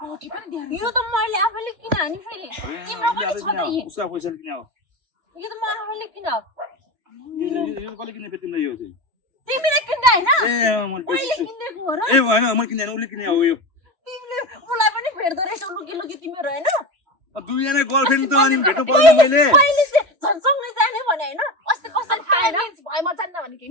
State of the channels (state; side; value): late; left; 2.9 ms